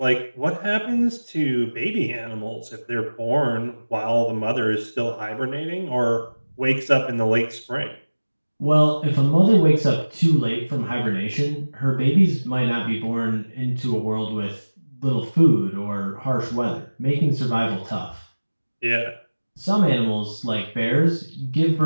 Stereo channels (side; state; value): both; inverted; correlation -1.00